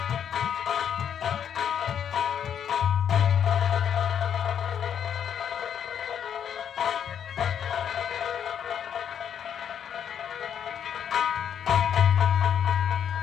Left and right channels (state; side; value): quieter; right; 8.7 dB